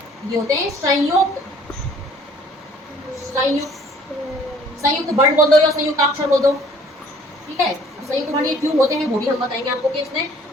ये होते हैं संयुक्त वर्ण बोल दो या संयुक्त अक्षर बोल दो, ठीक है। संयुक्त वर्ण ये क्यों होते हैं वो भी हम बताएंगे आपको। कि इसमें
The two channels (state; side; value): normal; both; correlation 0.55